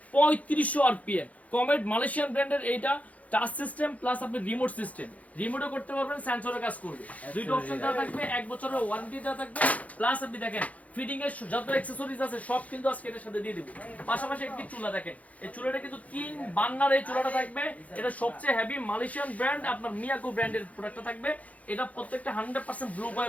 3500 আরপিএম কমেট মালয়েশিয়ান ব্র্যান্ডের এইটা। টাচ সিস্টেম প্লাস আপনি রিমোট সিস্টেম, রিমোটও করতে পারবেন, সেন্সরে কাজ করবে। দুইটা অপশন দেওয়া থাকবে, 1 বছরের ওয়ারেন্টি দেওয়া থাকবে। প্লাস আপনি দেখেন ফিটিং এর যত অ্যাকসেসরিজ আছে সব কিন্তু আজকে এর সাথে দিয়ে দিব। পাশাপাশি একটি চুলা দেখেন, এই চুলাটা কিন্তু 3 বার্নার এই চুলাটা থাকবে। এটা সবচেয়ে হেভি মালয়েশিয়ান ব্র্যান্ড, আপনার মিয়াকো ব্র্যান্ডের প্রোডাক্টটা থাকবে। এটা প্রত্যেকটা 100% ব্লু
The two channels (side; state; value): right; late; 0.069 ms